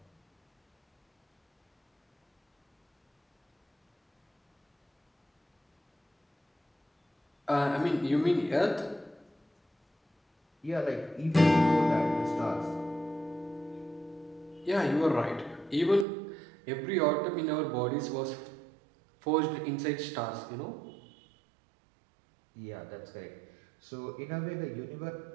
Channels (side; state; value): left; drops out; at 16.1 s